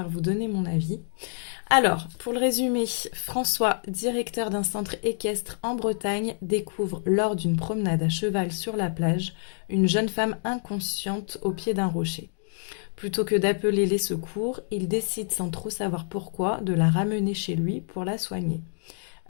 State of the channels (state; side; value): silent; right; digital silence